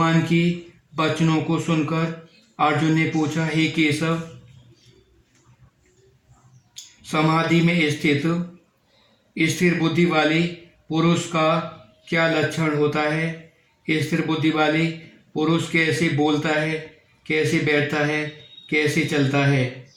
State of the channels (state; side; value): identical; both; correlation 1.00